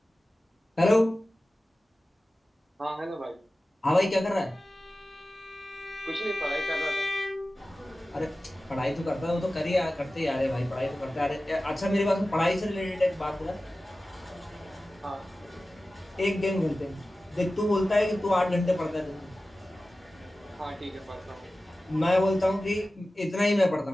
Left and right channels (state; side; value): normal; both; correlation 0.95